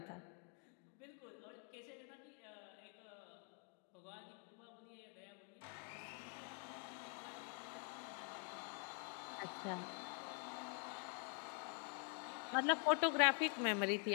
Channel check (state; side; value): quieter; right; 38.6 dB